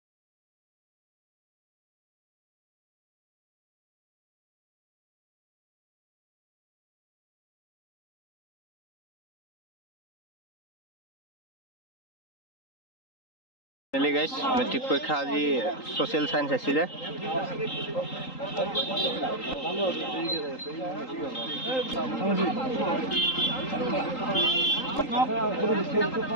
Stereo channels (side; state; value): right; late; 3.8 ms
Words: Really guys, metric পৰীক্ষা আজি social science আছিলে